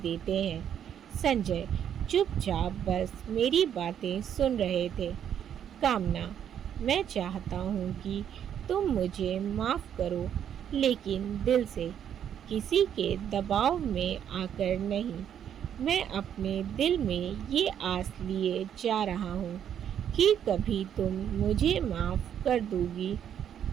हैं। संजय चुपचाप बस मेरी बातें सुन रहे थे। कामना, मैं चाहता हूँ कि तुम मुझे माफ़ करो, लेकिन दिल से, किसी के दबाव में आकर नहीं। मैं अपने दिल में ये आस लिए जा रहा हूँ कि कभी तुम मुझे माफ़ कर दोगी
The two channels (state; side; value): quieter; left; 9.3 dB